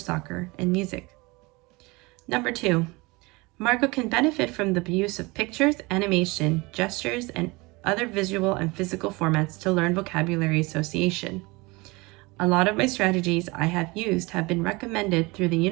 and music. Number 2, Marco can benefit from the use of pictures, animation, gestures, and other visual and physical formats to learn vocabulary association. A lot of my strategies I have used have been recommended through the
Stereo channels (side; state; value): left; quieter; 24.3 dB